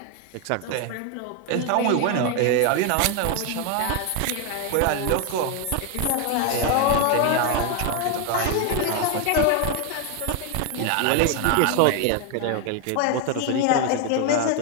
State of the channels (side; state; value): both; different; correlation 0.01